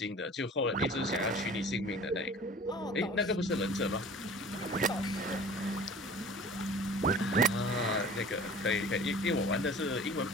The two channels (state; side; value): normal; both; correlation 0.44